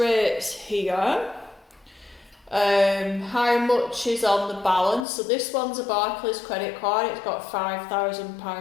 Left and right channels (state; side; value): drops out; right; at 5.1 s